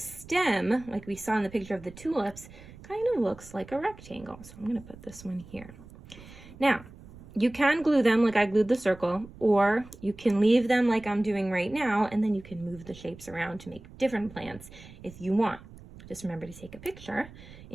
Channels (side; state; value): right; noise; rumble, 19 dB below the sound